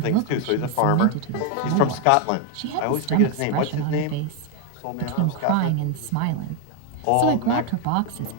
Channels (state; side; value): different; both; correlation 0.01